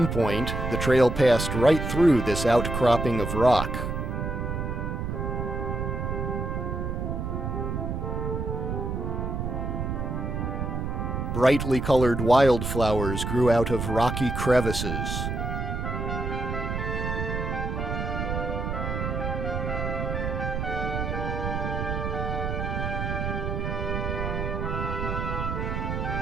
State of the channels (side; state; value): right; noise; rumble, 2 dB below the sound